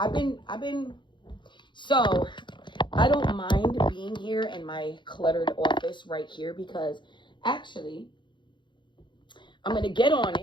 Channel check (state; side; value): late; right; 0.23 ms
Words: been so I don't mind being here in my cluttered office right here, because actually I'm gonna get on